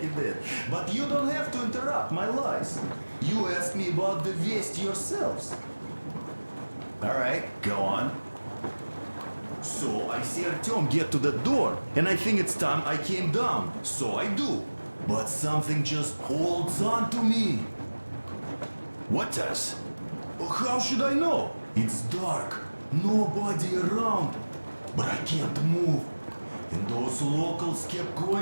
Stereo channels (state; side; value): inverted; both; correlation -1.00